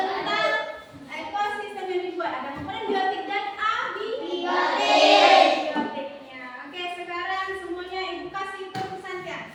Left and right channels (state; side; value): identical; both; correlation 1.00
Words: ekosistem yang dibuat. Ada komponen biotik dan abiotiknya. Oke, sekarang semuanya ibu kasih tepuk santiang.